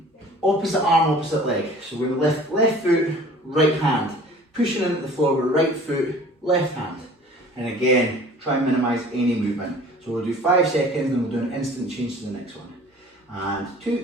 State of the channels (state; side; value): normal; both; correlation 0.47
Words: opposite arm, opposite leg. So we're going to lift left foot, right hand. Pushing into the floor with right foot, left hand. And again, try and minimise any movement. So we'll do 5 seconds and we'll do an instant change to the next one. And